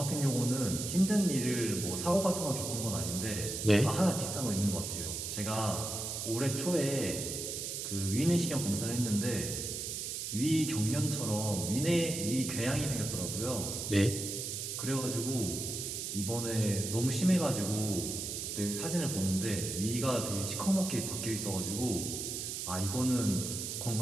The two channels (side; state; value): right; noise; hiss, 4 dB below the sound